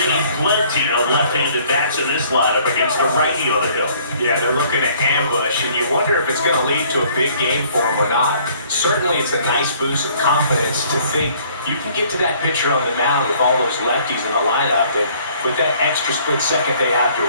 plenty of left-handed bats in this lineup against the righty on the hill. Yeah, they're looking to ambush, and you wonder if it's going to lead to a big game for them or not. Certainly, it's a nice boost of confidence to think you can get to that pitcher on the mound with all those lefties in the lineup, and with that extra split second they have to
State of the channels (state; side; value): inverted; both; correlation -0.59